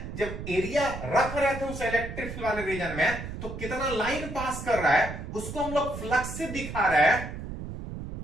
जब एरिया रख रहे थे उस इलेक्ट्रिक फील्ड वाले रीजन में, तो कितना लाइन पास कर रहा है उसको हम लोग फ्लक्स से दिखा रहे हैं।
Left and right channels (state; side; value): noise; right; rumble, 8 dB below the sound